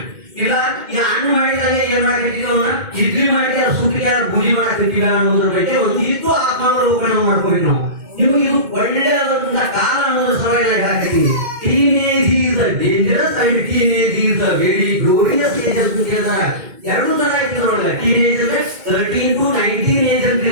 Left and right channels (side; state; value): left; late; 2.2 ms